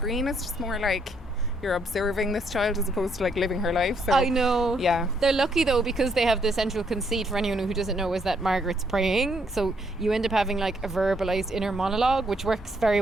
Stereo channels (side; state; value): both; normal; correlation 0.72